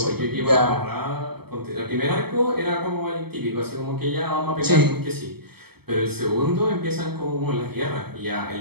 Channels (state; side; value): late; left; 0.96 ms